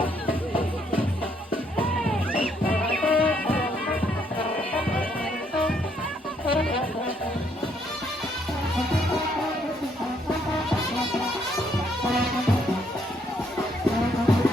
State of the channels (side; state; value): both; normal; correlation 0.71